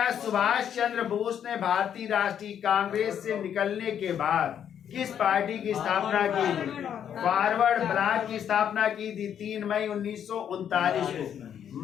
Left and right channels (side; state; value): right; quieter; 9.0 dB